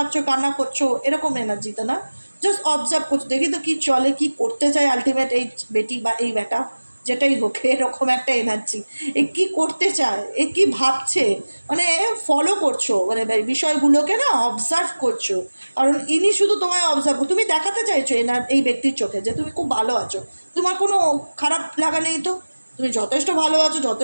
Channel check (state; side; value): inverted; both; correlation -1.00